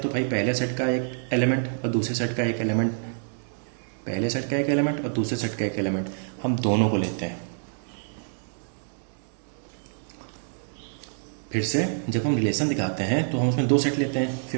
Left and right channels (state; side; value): silent; left; digital silence